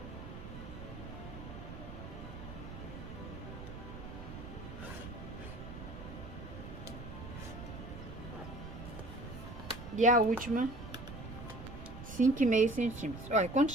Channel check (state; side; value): noise; right; rumble, 10 dB below the sound